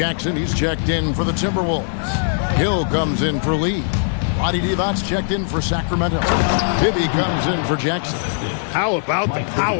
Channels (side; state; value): right; silent; digital silence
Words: he's checked in for the Timberwolves. Hill comes in for Lee. Vlade Divac's checked in for Sacramento. Bibby comes in for Jackson. How about the